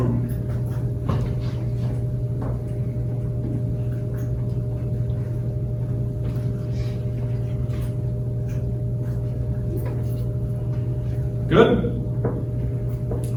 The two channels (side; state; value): both; identical; correlation 1.00